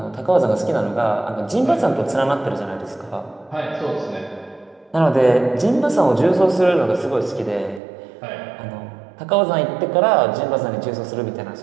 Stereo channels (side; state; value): left; drops out; at 7.8 s